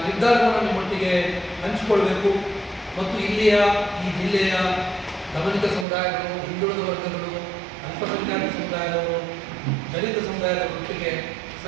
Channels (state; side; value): drops out; left; at 5.9 s